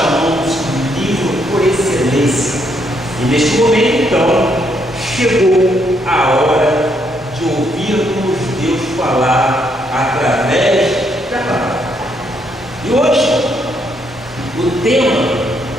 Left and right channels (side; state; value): both; normal; correlation 0.74